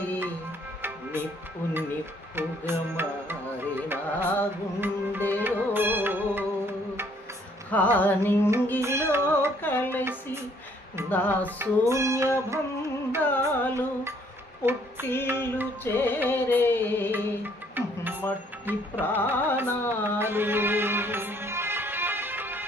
నిప్పు నిప్పుగా మారి నా గుండెలో హానింగిలో కలిసి నా శూన్య బంధాలు పుట్టిల్లు చేరే మట్టి ప్రాణాలు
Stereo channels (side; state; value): both; normal; correlation 0.63